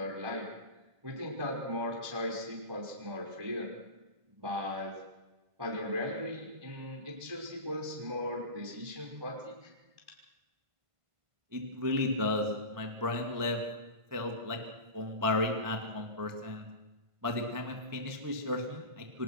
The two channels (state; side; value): late; left; 1.5 ms